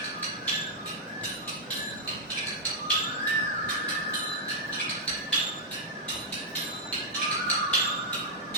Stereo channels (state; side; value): normal; both; correlation -0.08